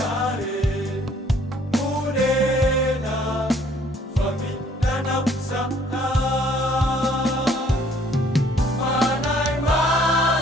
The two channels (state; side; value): normal; both; correlation 0.60